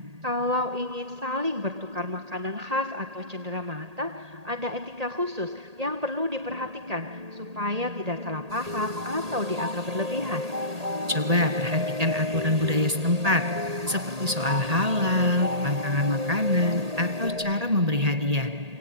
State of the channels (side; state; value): left; late; 1.8 ms